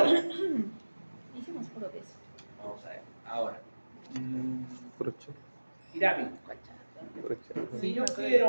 Hicimos puro de eso. vamos a ver, ahora. Brocha. Irami, Brocha.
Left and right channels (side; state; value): both; inverted; correlation -1.00